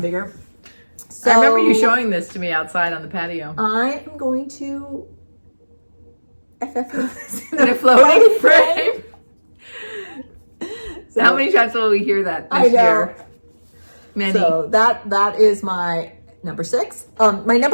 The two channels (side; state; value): both; inverted; correlation -1.00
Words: So I remember you showing this to me outside on the patio. I am going to FFOs in a floating frame. So, how many times will we hear that this year? Many. So that is my number 6. My